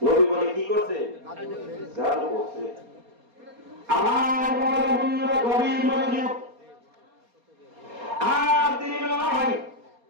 বলে কি করছে? জাদু করছে। আমার বড় গভীর মনোযোগ। আর তিনি নয়,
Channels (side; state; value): left; late; 4.3 ms